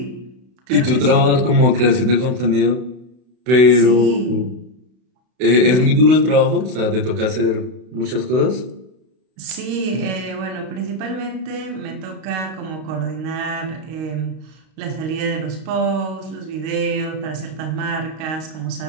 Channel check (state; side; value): late; left; 32 ms